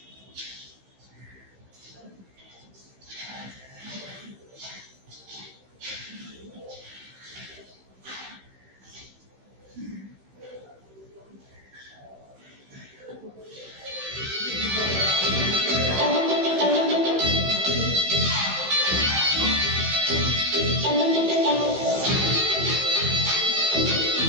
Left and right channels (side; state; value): left; late; 15 ms